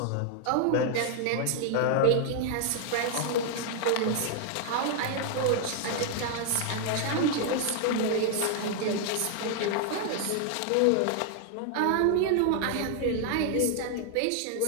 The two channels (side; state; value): both; different; correlation 0.00